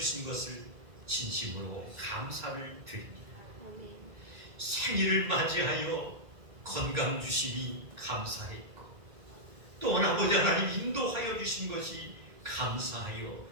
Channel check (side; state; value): left; late; 2.0 ms